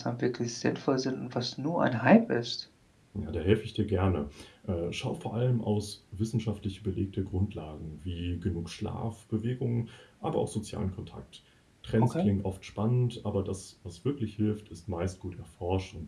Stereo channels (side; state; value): both; identical; correlation 1.00